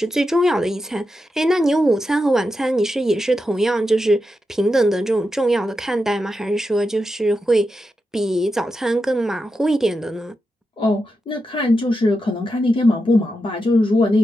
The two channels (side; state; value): both; normal; correlation 0.88